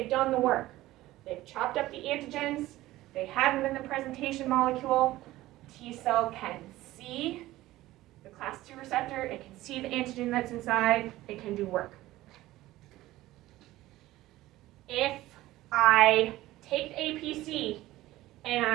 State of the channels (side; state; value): left; quieter; 16.6 dB